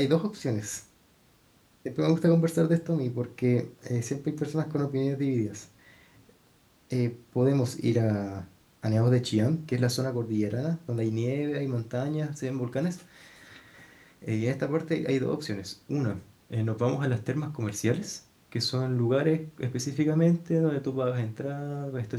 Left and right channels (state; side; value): identical; both; correlation 1.00